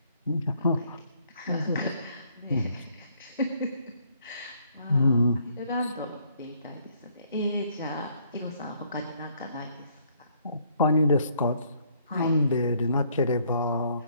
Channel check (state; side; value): inverted; both; correlation -0.66